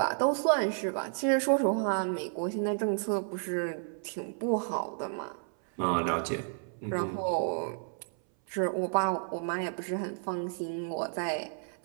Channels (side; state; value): left; silent; 57 dB below the other